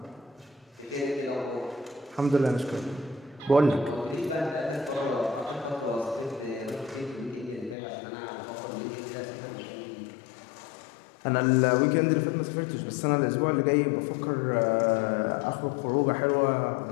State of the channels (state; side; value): drops out; right; at 7.8 s